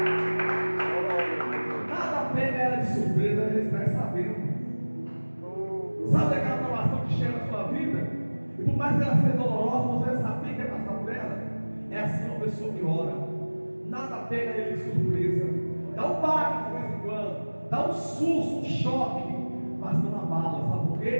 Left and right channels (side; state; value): both; inverted; correlation -1.00